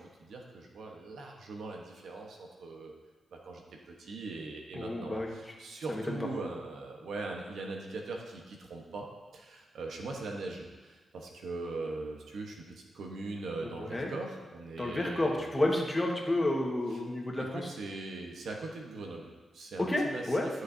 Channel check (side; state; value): both; normal; correlation 0.89